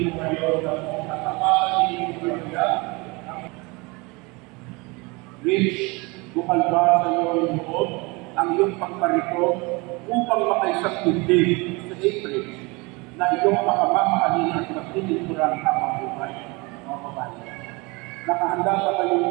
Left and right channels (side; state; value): left; quieter; 26.6 dB